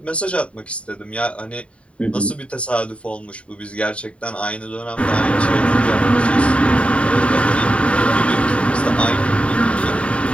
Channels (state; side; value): late; right; 0.061 ms